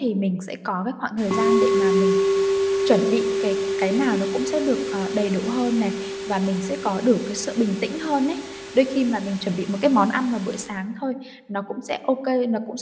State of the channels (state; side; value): identical; both; correlation 1.00